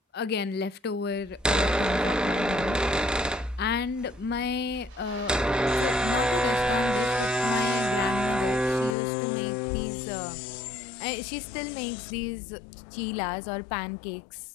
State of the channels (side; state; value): right; drops out; at 9.0 s